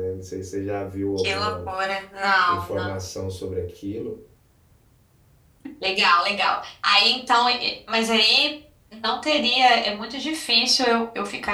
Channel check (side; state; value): both; identical; correlation 1.00